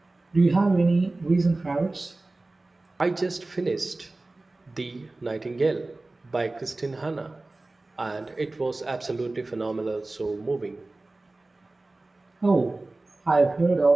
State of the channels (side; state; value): left; quieter; 3.1 dB